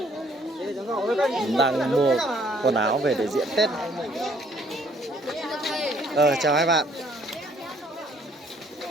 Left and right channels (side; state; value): both; normal; correlation 0.63